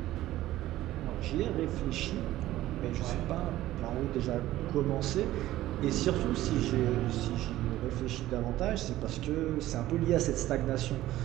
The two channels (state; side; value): quieter; left; 15.1 dB